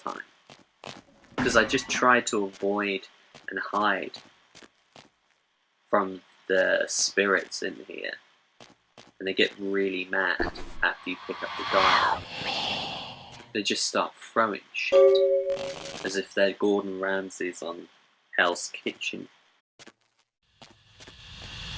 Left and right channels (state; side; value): identical; both; correlation 1.00